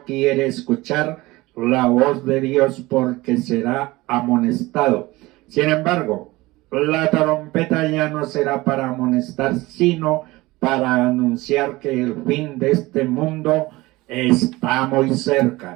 quiere escuchar la voz de Dios porque será amonestado. Sin embargo, la trompeta ya no será para amonestar, sino para anunciar que el fin de este mundo está muy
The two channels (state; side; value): quieter; left; 20.3 dB